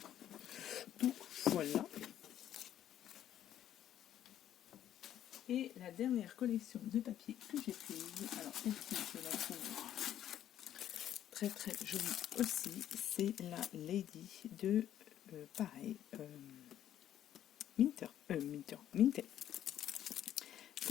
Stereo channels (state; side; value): quieter; right; 11.1 dB